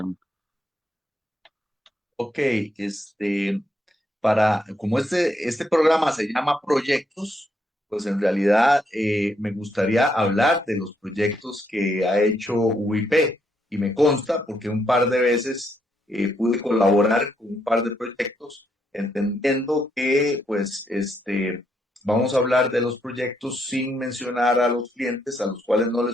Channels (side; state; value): both; normal; correlation 0.76